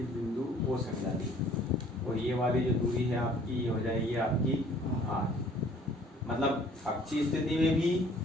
बिंदु O से मिला दिया, और ये वाली जो दूरी है आपकी, ये हो जाएगी आपकी R। मतलब अक्षीय स्थिति में भी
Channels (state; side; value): normal; both; correlation 0.55